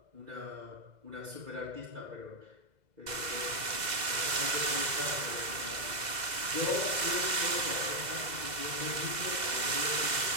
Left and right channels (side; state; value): left; late; 2.0 ms